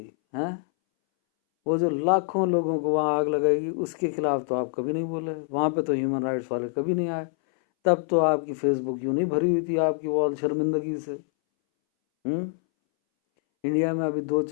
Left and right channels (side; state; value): right; silent; 61 dB below the other